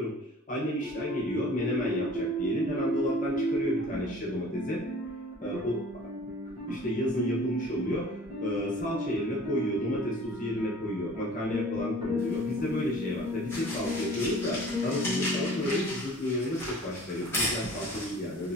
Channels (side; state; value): both; normal; correlation 0.48